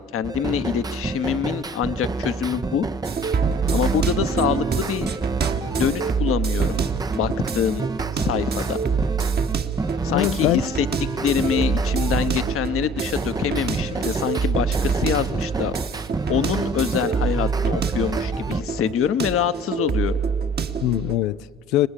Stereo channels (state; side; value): normal; both; correlation 0.51